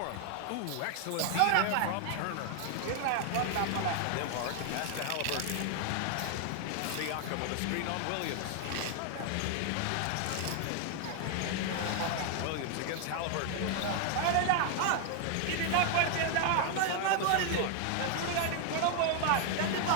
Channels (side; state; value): both; different; correlation 0.00